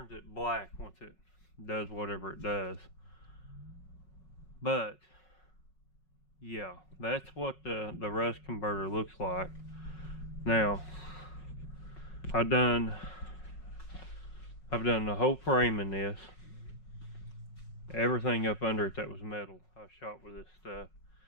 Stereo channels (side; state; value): right; late; 5.4 ms